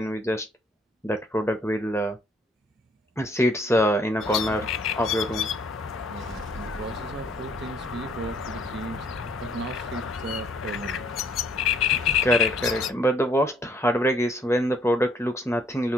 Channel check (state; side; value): normal; both; correlation 0.63